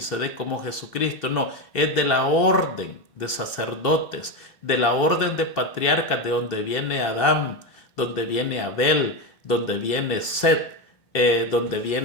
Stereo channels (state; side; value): late; right; 2.7 ms